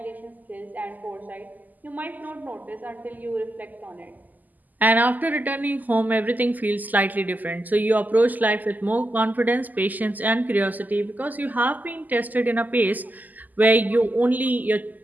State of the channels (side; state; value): left; late; 0.083 ms